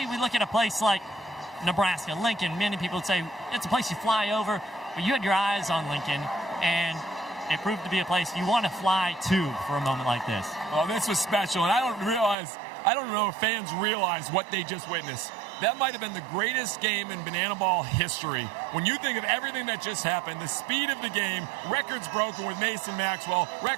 we look at a place like Nebraska, Lincoln. Many people would say it's a place you fly over, but you had your eyes on Lincoln, and it proved to be a place you want to fly to for a moment like this. Well, this was special, and I don't know if fans realize what they just witnessed. That might have been the greatest game in Banana Ball history. When you think of everything that just happened, the speed of the game, records broken with Mason Maxwell,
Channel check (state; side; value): drops out; left; at 12.4 s